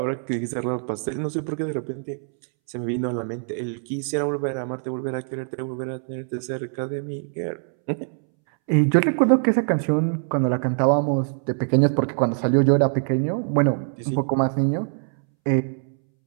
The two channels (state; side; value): silent; left; 63 dB below the other